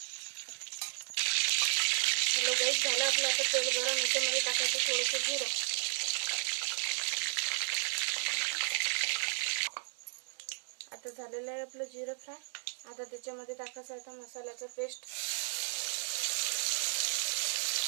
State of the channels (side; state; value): left; silent; 55 dB below the other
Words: हॅलो गाईस, झालं आपलं आता तेल गरम। याच्यामध्ये टाकायचं थोडंसं जिरं। आता झालेलं आहे आपलं जिरं फ्राय। आता त्याच्यामध्ये टाकायचं आता मसाल्याचा पेस्ट।